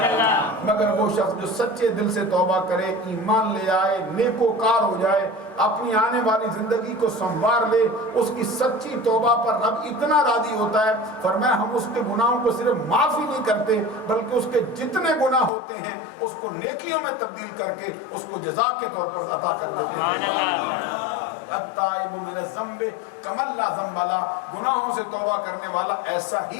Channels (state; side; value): drops out; right; at 15.5 s